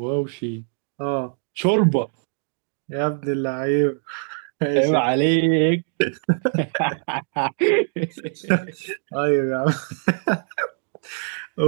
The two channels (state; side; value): silent; left; digital silence